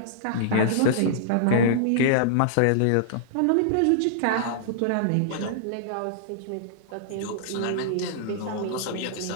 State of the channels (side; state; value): both; different; correlation -0.02